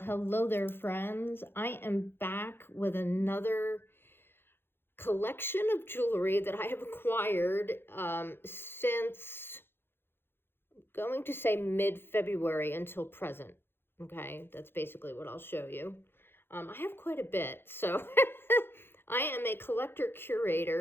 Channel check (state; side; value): late; right; 0.11 ms